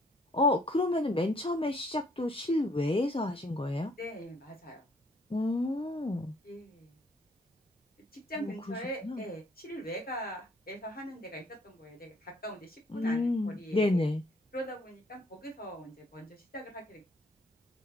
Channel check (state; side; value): normal; both; correlation 0.63